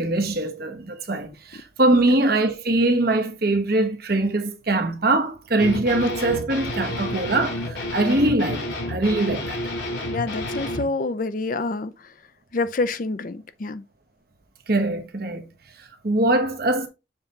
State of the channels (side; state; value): both; normal; correlation 0.39